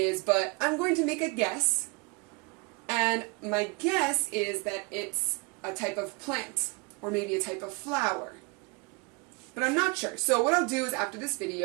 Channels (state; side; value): quieter; left; 29.1 dB